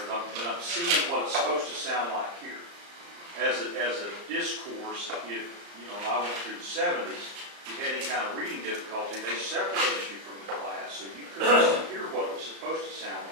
I'm seeing what it's supposed to sound like here. As a discourse, if I went through the 70s, you had any kind of reading difficulty, they separated you from the class, so you couldn't hear what it was supposed to sound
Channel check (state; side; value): late; left; 35 ms